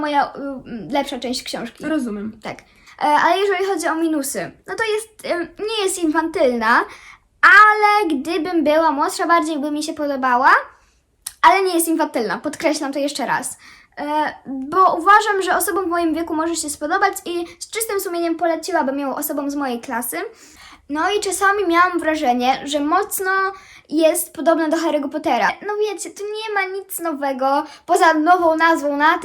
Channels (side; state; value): both; identical; correlation 1.00